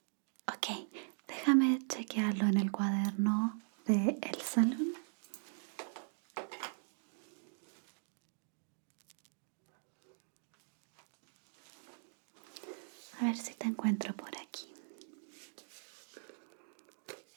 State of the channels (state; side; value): silent; left; digital silence